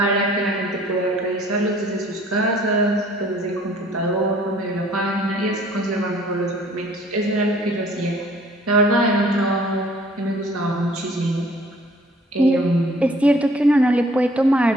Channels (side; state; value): both; normal; correlation 0.56